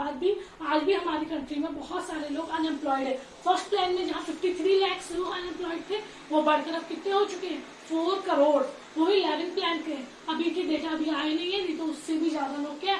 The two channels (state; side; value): identical; both; correlation 1.00